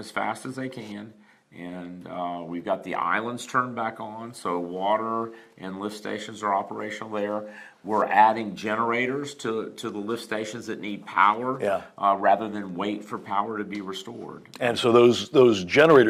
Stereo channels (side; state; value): both; identical; correlation 1.00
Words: fast as they can. And we've got the islands turned back on, so water and lift stations are operational there. We're adding generators to the lift stations that need power, rather than wait for power to be restored. And so those